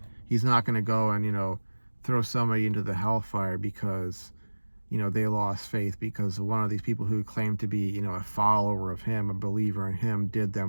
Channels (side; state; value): both; inverted; correlation -1.00